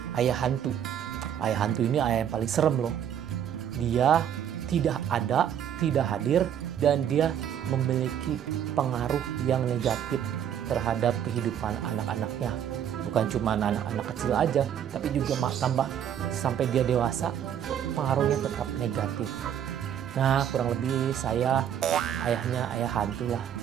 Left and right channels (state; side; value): quieter; left; 9.5 dB